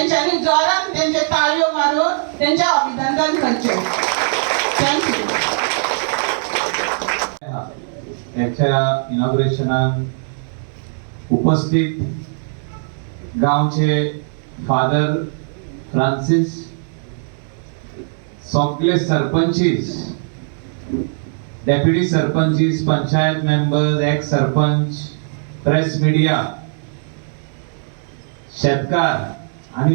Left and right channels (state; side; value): silent; left; digital silence